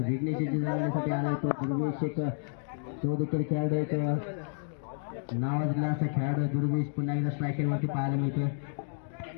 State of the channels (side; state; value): right; silent; digital silence